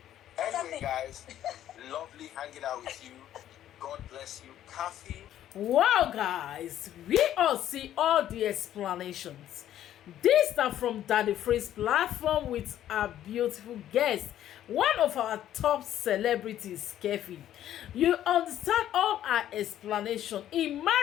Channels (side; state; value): right; quieter; 11.8 dB